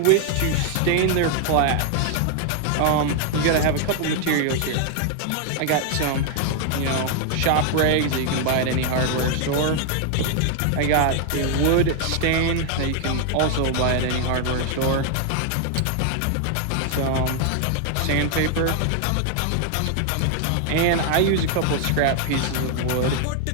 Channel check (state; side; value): different; both; correlation 0.00